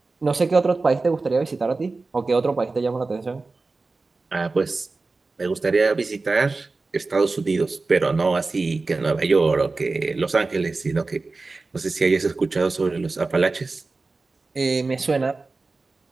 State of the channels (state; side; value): quieter; left; 3.7 dB